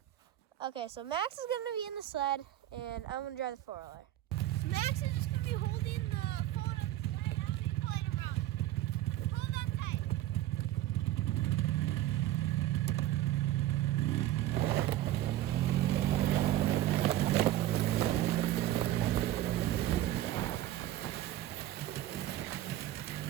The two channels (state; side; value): quieter; left; 13.9 dB